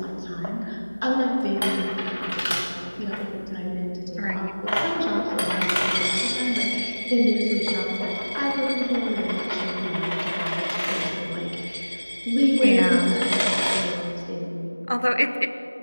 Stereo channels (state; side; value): inverted; both; correlation -1.00